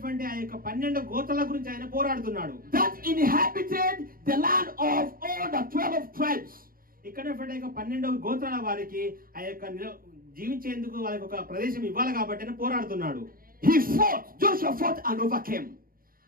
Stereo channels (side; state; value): left; late; 0.42 ms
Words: ఆ యొక్క 12 గోత్రాల గురించి ఆయన పోరాడుతున్నాడు. that inhabited the land of all the 12 tribes. ఇక్కడ ఉన్నటువంటి 12 గోత్రాల వారికి ఆ యొక్క జీవించేందుకు వాళ్ళకి ఒక ప్రదేశం ఇవ్వాలి కాబట్టి ఆయన పోరాడుతున్నాడు. He fought. Joshua fought and overcame.